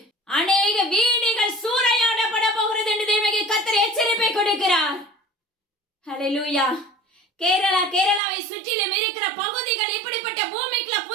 அநேக வீடுகள் சூறையாடப்பட போகிறது என்று தேவனுடைய கர்த்தர் எச்சரிப்பை கொடுக்கிறார். ஹல்லேலூயா. கேரளாவை சுற்றிலும் இருக்கிற பகுதிகள் இப்படிப்பட்ட பூமிக்குள்ள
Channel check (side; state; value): left; drops out; at 8.2 s